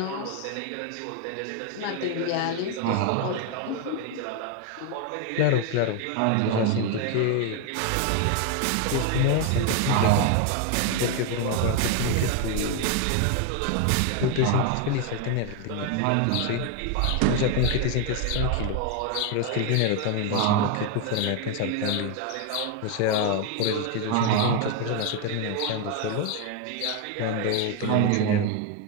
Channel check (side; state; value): both; different; correlation 0.01